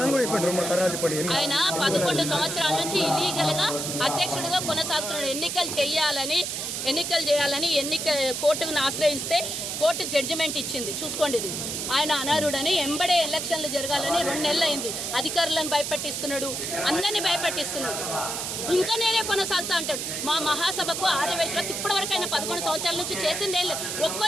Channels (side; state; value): right; noise; hiss, 3 dB below the sound